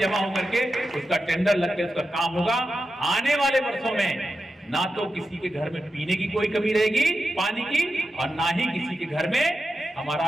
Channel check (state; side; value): normal; both; correlation 0.90